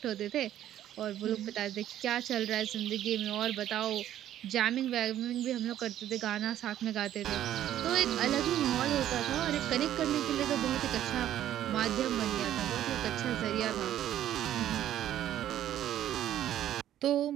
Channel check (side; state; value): left; quieter; 11.8 dB